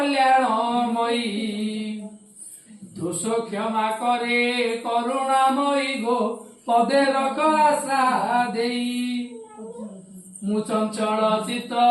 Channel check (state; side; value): identical; both; correlation 1.00